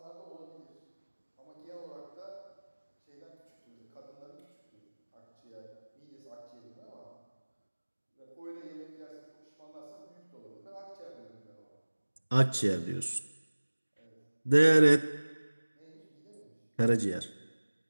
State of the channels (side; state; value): both; inverted; correlation -1.00